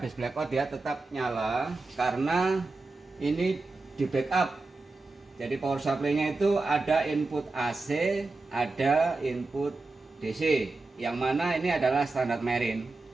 blackout dia tetap nyala karena ini di backup. Jadi power supply-nya itu ada input AC, ada input DC, yang mana ini adalah standar marine.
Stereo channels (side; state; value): left; quieter; 3.4 dB